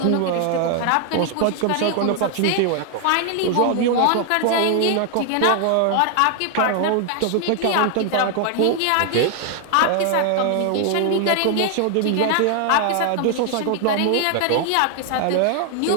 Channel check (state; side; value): different; both; correlation 0.00